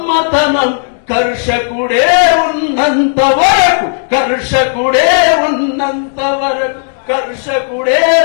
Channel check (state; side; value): silent; right; digital silence